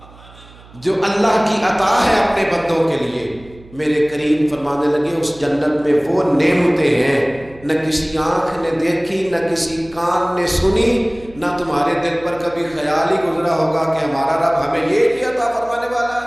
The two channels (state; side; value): noise; right; hum, 23 dB below the sound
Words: جو اللہ کی عطا ہے اپنے بندوں کے لیے. میرے کریم فرمانے لگے اس جنت میں وہ نعمتیں ہیں نہ کسی آنکھ نے دیکھی، نہ کسی کان نے سنی، نہ تمہارے دل پر کبھی خیال ہی گزرا ہوگا کہ ہمارا رب ہمیں یہ بھی عطا فرمانے والا